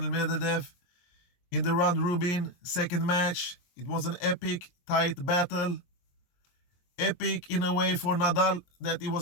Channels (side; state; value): right; late; 23 ms